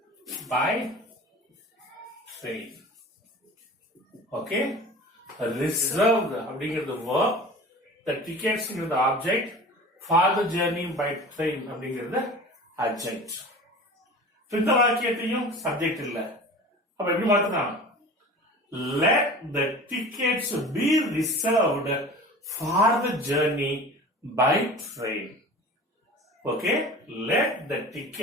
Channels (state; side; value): normal; both; correlation 0.38